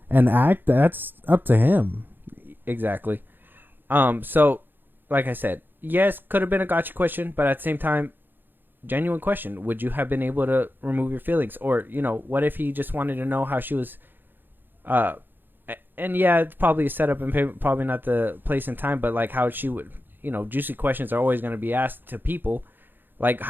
act, that's up to him. Exactly. So, like I said, yes, could have been a gotcha question, but at the same time, genuine question. Would you have been able to remove your feelings? Or, what if he just wanted to know how she was, and yeah, it's probably a setup and probably not the place and time, but like how she would, juicy questions are always going to be asked to people. Like,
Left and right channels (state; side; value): late; left; 0.094 ms